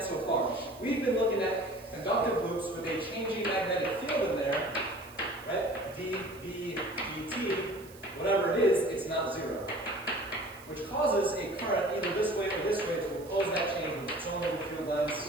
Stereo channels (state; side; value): noise; right; hiss, 22 dB below the sound